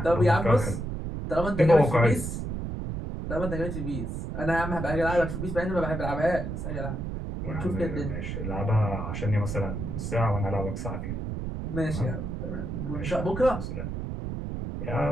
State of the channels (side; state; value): right; noise; rumble, 4 dB below the sound